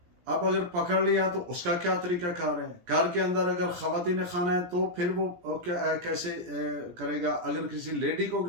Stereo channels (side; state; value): left; late; 17 ms